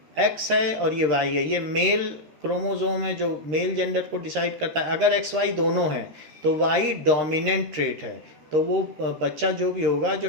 X है और ये Y है, ये मेल क्रोमोसोम है जो मेल जेंडर को डिसाइड करता है। अगर XY दोनों हैं तो Y डोमिनेंट ट्रेट है, तो वो बच्चा जो भी होगा, जो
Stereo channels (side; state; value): left; late; 13 ms